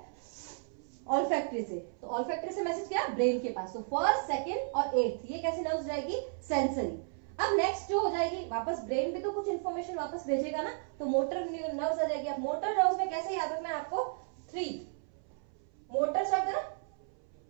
ऑल्फैक्टरी से। तो ऑल्फैक्टरी से मैसेज क्या, ब्रेन के पास। तो फर्स्ट सेकंड और 8th ये कैसी नर्व्स जाएगी, सेंसरी। अब नेक्स्ट जो हो जाएगी, वापस ब्रेन पे तो कुछ इंफॉर्मेशन वापस भेजेगा ना, तो मोटर नर्व्स आ जाएगी। अब मोटर नर्व्स में कैसे याद रखना है आपको, 3 मोटर शब्द है ना,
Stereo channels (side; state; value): left; silent; 55 dB below the other